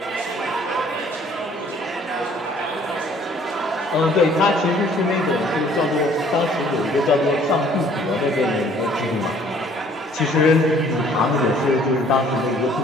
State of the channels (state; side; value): normal; both; correlation 0.58